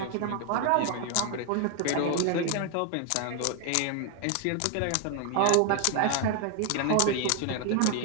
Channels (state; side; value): different; both; correlation 0.00